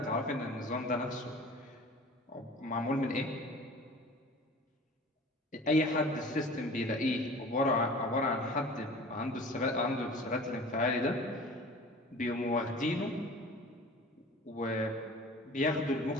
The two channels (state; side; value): normal; both; correlation 0.42